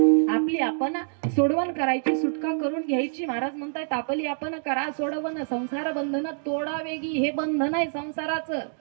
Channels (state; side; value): silent; left; digital silence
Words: आपली आपण सोडवण करायची सुटका करून घ्यायची महाराज म्हणतायत आपली आपण करा सोडवण संसार बंधन तोडा वेगी हे बंधन आहे संसाराचं